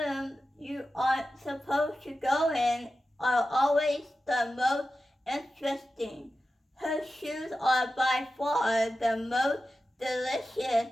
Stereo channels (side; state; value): both; normal; correlation 0.93